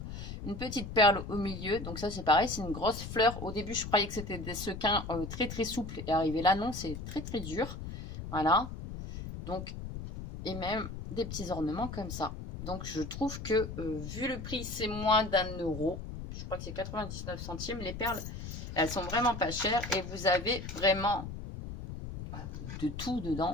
Une petite perle au milieu. Donc ça, c'est pareil, c'est une grosse fleur. Au début, je croyais que c'était des sequins très très souples. Et arrivé là, non, c'est très très dur. Voilà. Donc, et même des petits ornements comme ça. Donc, je trouve que, vu le prix, c'est moins d'1 €. Je crois que c'est 99 centimes. Les perles, elles sont vraiment pas chères. Et vous avez vraiment de tout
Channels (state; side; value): noise; left; rumble, 8 dB below the sound